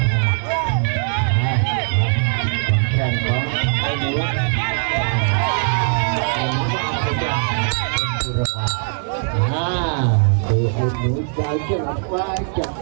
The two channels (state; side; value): silent; left; digital silence